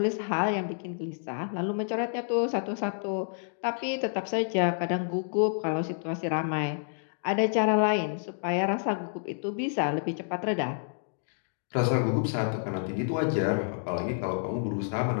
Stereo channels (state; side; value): silent; right; digital silence